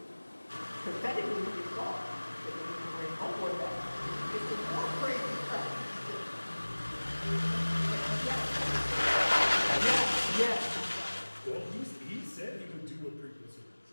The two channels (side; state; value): both; inverted; correlation -1.00